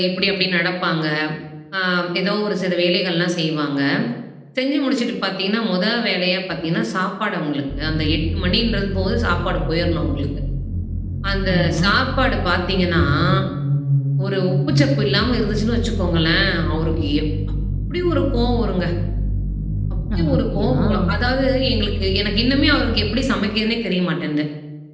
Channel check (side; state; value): both; identical; correlation 1.00